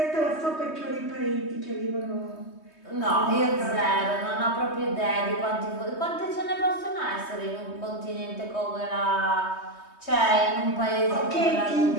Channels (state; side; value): late; right; 3.2 ms